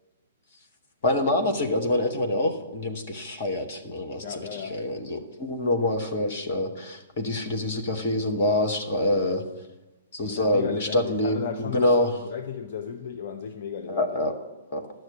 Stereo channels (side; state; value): both; inverted; correlation -0.46